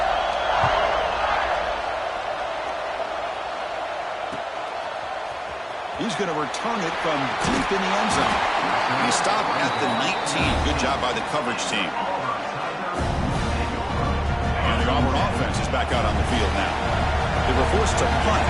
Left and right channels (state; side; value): identical; both; correlation 1.00